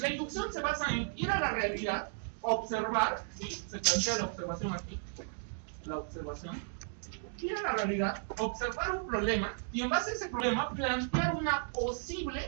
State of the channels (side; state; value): left; silent; digital silence